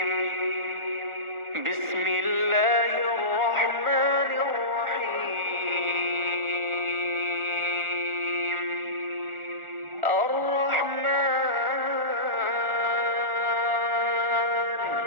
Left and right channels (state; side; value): late; left; 1.4 ms